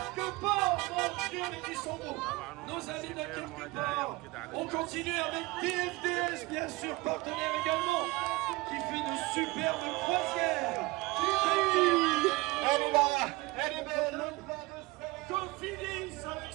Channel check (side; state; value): left; quieter; 22.1 dB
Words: part, mon Dieu, mais qui sont beaux. Nos amis de quelque part. On continue avec DFDS, bien sûr, partenaire également, qui fait de superbes croisières. Elle est là, elle est belle. Cofidis avec